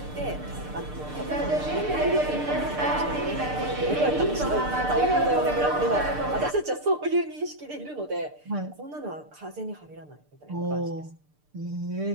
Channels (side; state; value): left; late; 6.7 ms